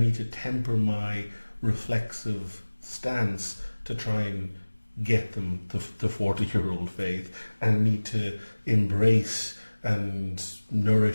to temper my reflexive stance to try and get them to 40-year-old faith, and need to embrace and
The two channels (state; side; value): inverted; both; correlation -1.00